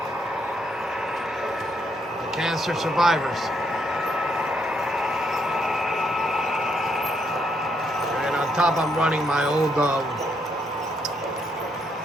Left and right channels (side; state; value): both; normal; correlation 0.74